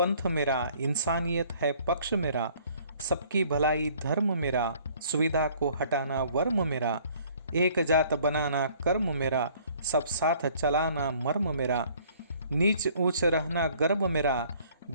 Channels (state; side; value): inverted; both; correlation -0.57